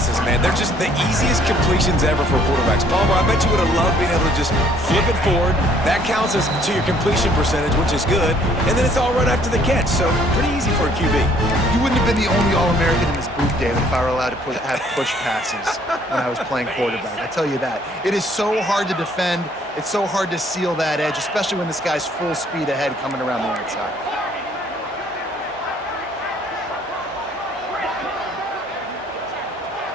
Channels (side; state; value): both; normal; correlation 0.61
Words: man, they're just the easiest completions ever for quarterbacks. Palmer, I bet you would have loved being able to just flip it forward. That counts as to your completion percentage, which is good. And then it's all run after the catch, so pretty easy for a QB. You wouldn't have been the only All-American in this booth, David, if I were allowed to have push passes when I was playing quarterback. I tell you that. It is so hard to defend. It's so hard to seal that edge, especially when this guy's full speed ahead coming around the outside.